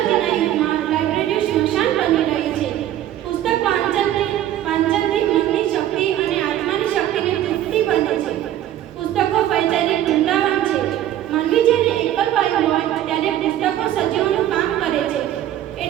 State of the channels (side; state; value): left; quieter; 12.3 dB